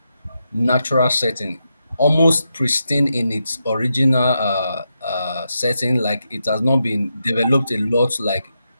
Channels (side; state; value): both; inverted; correlation -0.85